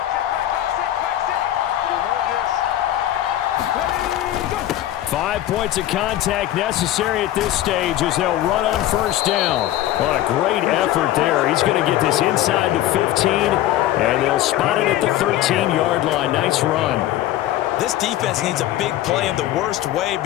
5 points of contact necessary at this stage as they'll run on 1st down. What a great effort there. He's going to get this inside the 15, and they'll spot it at the 13-yard line. Nice run. This defense needs a big play in the worst way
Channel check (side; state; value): right; quieter; 13.6 dB